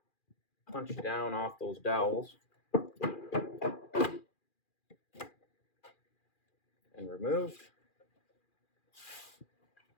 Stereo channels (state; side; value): late; right; 2.4 ms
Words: punched down off those dowels and removed.